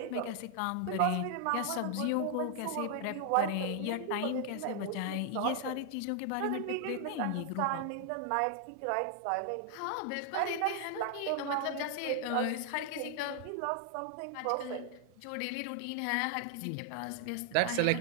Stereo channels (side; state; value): both; different; correlation 0.00